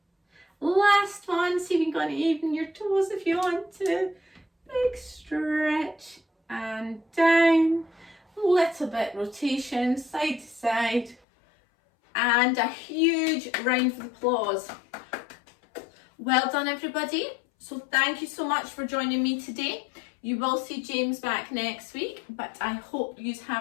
Last one, see if you can even your toes if you want to. Big stretch and down. Little bit rotation, side to side. And a huge round of applause. Well done, everybody. So thank you so much for joining me today. You will see James back next week, but I hope you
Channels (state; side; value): drops out; right; at 11.2 s